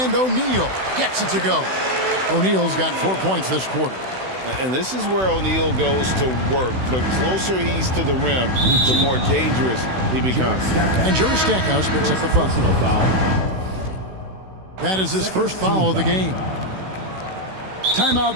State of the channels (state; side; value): late; left; 16 ms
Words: O'Neal gets it to go. O'Neal's got 4 points this quarter. And this is where O'Neal goes to work. The closer he's to the rim, the more dangerous he becomes. And Jerry Stackhouse picks up the foul. That is his first foul of the game.